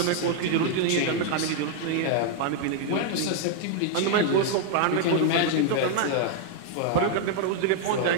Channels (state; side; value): different; both; correlation 0.00